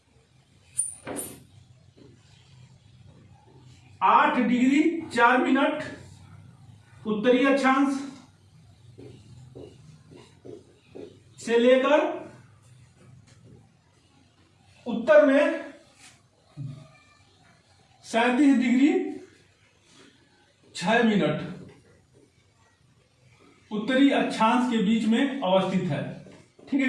8 डिग्री 4 मिनट उत्तरी अक्षांश से लेकर उत्तर में 37 डिग्री 6 मिनट उत्तरी अक्षांश के बीच में अवस्थित है। ठीक है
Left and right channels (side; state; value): both; identical; correlation 1.00